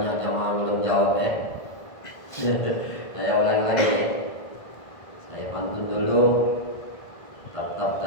jamaah belum jawab ya. Saya ulangi lagi ya. Saya pantun dulu. Tatap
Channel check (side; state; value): right; late; 1.5 ms